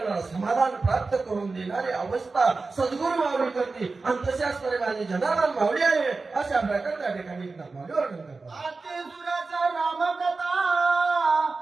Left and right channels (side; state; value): left; quieter; 3.9 dB